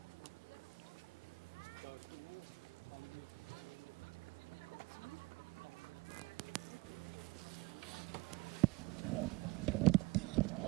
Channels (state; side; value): quieter; left; 23.5 dB